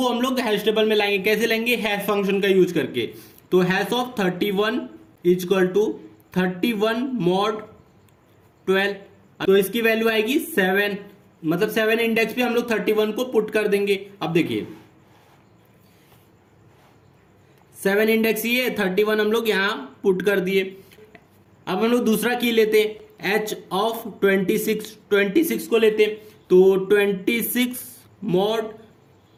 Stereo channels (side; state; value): both; identical; correlation 1.00